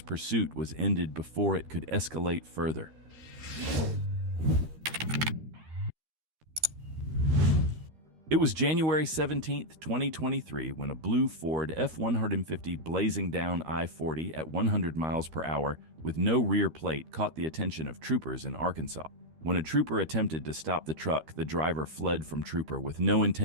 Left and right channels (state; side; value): late; left; 13 ms